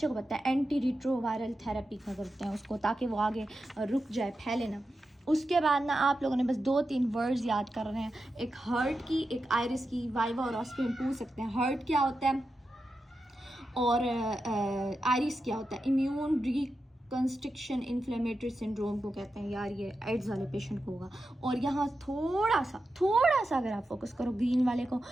को पता है, एंटी रिट्रोवायरल थेरेपी का करते हैं उसको, ताकि वो आगे रुक जाए, फैले ना। उसके बाद ना आप लोगों ने बस 2-3 वर्ड्स याद कर रहे हैं, एक हर्ट की, एक आयरिस की, वाइवा और ऑस्पी में पूछ सकते हैं हर्ट क्या होता है और आयरिस क्या होता है। इम्यून रिकंस्ट्रक्शन इन्फ्लेमेटरी सिंड्रोम को कहते हैं यार, ये एड्स वाले पेशेंट को होगा। और यहाँ थोड़ा सा अगर आप फोकस करो ग्रीन वाले को,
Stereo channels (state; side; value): normal; both; correlation 0.90